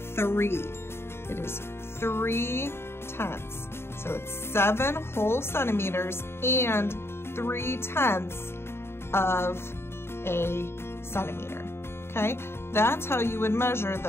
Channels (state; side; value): late; right; 0.12 ms